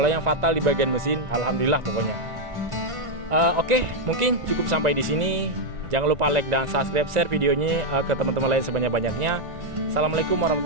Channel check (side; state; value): left; late; 2.0 ms